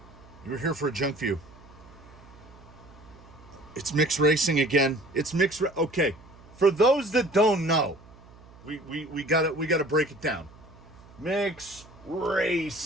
a Junkview. It's mixed racing again. Okay. For those that don't know, we gotta break it down. Mixed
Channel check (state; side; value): noise; right; hum, 22 dB below the sound